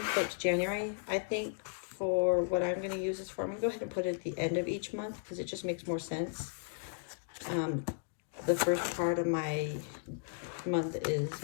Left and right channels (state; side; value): silent; right; digital silence